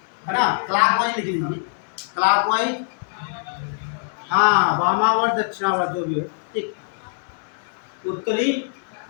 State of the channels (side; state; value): right; silent; digital silence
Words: है ना, क्लॉकवाइज लिख लीजिए, क्लॉकवाइज, हाँ वामावर्त दक्षिणावर्त जो भी हो, ठीक। उत्तरी